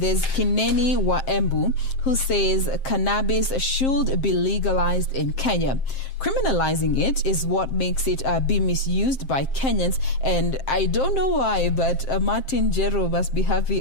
there's Kineni Waembu, who says cannabis should be legalized in Kenya. Criminalizing it is what makes it be misused by Kenyans, and I don't know why, but Martin Jero must be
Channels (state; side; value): late; right; 7.6 ms